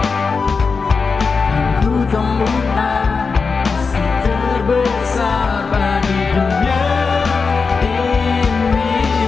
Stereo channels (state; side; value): quieter; right; 4.8 dB